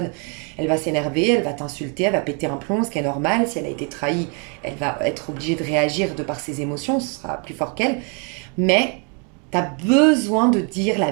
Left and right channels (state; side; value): quieter; left; 37.0 dB